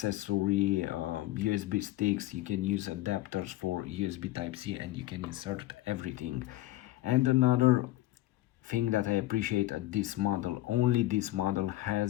USB sticks. You can use adapters for USB Type-C, and you can insert everything. And another thing that I appreciate at this model, only this model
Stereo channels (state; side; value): quieter; right; 16.5 dB